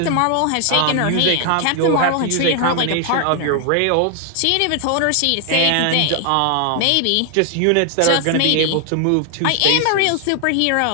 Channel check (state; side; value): different; both; correlation 0.00